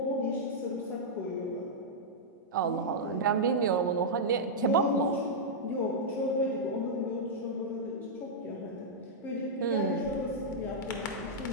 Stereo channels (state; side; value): normal; both; correlation -0.08